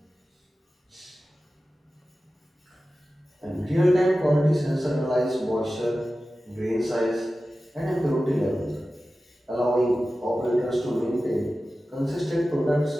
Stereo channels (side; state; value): both; normal; correlation 0.95